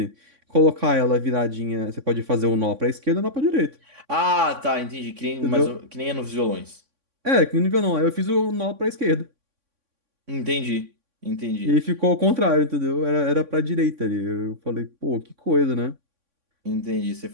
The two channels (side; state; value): left; late; 3.6 ms